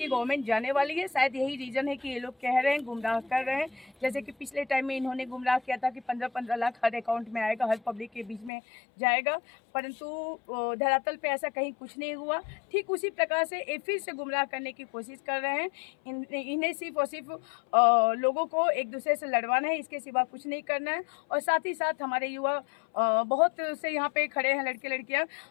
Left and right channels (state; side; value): drops out; right; at 8.5 s